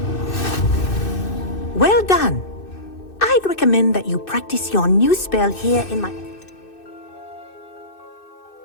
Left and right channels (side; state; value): right; late; 2.6 ms